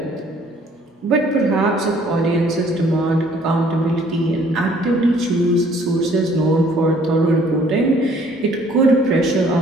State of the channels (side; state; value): both; normal; correlation 0.59